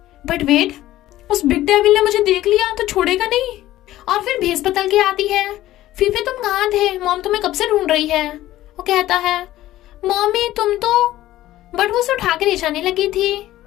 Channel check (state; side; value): quieter; right; 14.9 dB